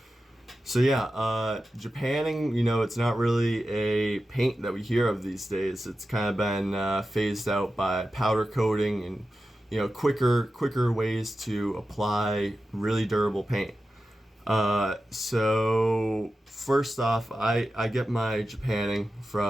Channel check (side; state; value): both; normal; correlation 0.92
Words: so yeah, Japanning, it's not really a paint that we hear of these days. It's kind of been phased out by powder coating and quicker ways to apply really durable paint. So first off, I get my Japanning